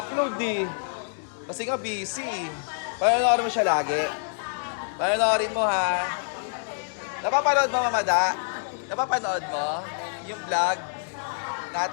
eh. Kasi nga busy. Panoorin mo siya lagi. Panoorin mo ha. Napapanood mo, Mamada? Napapanood mo? Yung vlog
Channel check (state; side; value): silent; right; digital silence